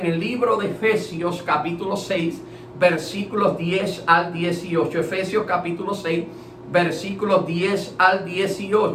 el libro de Efesios capítulo 6, versículos 10 al 18. Efesios capítulo 6, versículos 10 al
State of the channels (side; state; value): both; identical; correlation 1.00